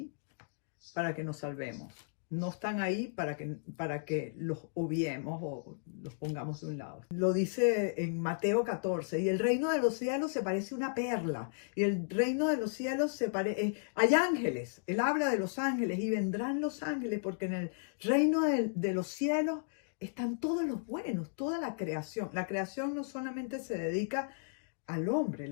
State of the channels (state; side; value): silent; right; digital silence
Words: para que nos salvemos. No están ahí para que los obviemos o los pongamos de un lado. Lo dice en Mateo 14, y el reino de los cielos se parece a una perla, y el reino de los cielos hay ángeles, él habla de los ángeles, y vendrán los ángeles, porque en el reino de los cielos están todos los buenos, toda la creación. La creación no solamente se dedica al hombre,